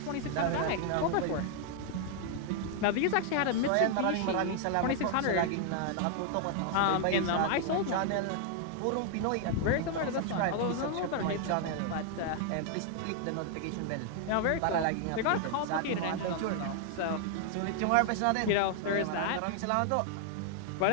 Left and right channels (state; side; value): different; both; correlation 0.00